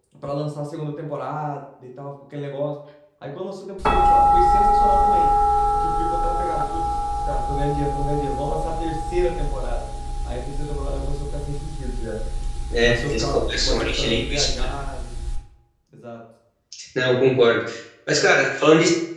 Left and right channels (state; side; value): identical; both; correlation 1.00